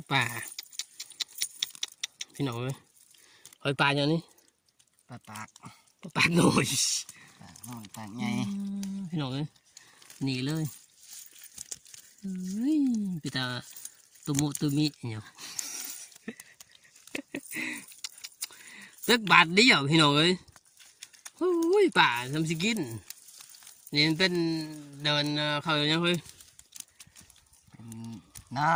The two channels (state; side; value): identical; both; correlation 1.00